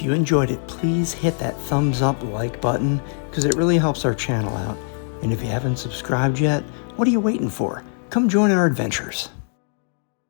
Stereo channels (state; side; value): silent; right; 55 dB below the other